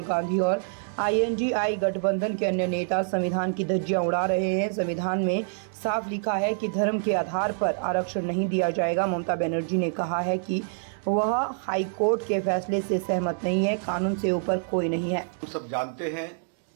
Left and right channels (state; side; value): silent; left; 61 dB below the other